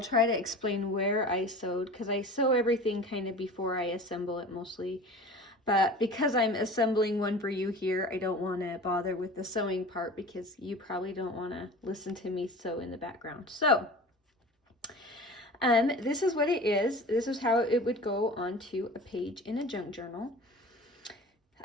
try to explain where I sewed, because I sew everything kind of before I assemble it mostly. But because I'm assembling one for you here, I don't want to bother with the sewing part because you probably don't want to listen to me sew in the background. So, this is what it is. This is how it would go onto a page in a junk journal.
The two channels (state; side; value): normal; both; correlation 0.38